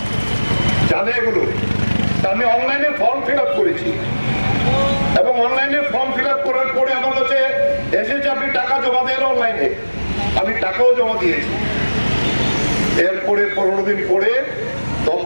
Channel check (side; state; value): both; inverted; correlation -1.00